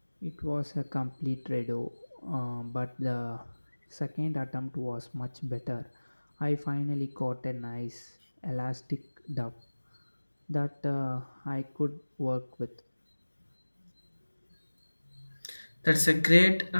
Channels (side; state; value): both; inverted; correlation -1.00